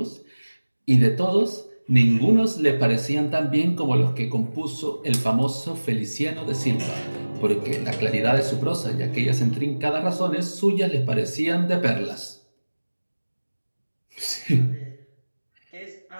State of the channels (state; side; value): inverted; both; correlation -1.00